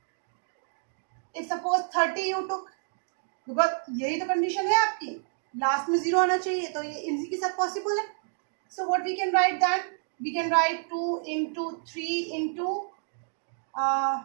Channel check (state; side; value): silent; left; digital silence